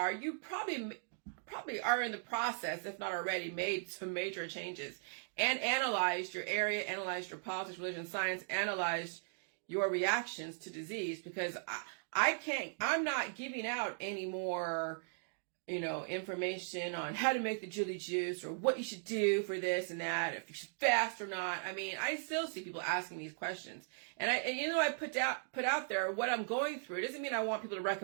you probably are in the process, if not already, made some major changes and analyzed your area, analyzed your politics, religion, science, analyzed your reactions to disease, because I'm not giving out any more information on how to make the jilly juice or what you should do for this and that, if you should fast or not. I mean, I still see people asking these questions. And I put out there what I'm going through. It doesn't mean I want people to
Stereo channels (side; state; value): left; silent; digital silence